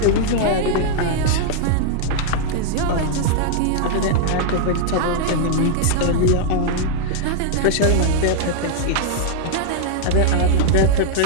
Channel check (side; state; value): both; different; correlation -0.01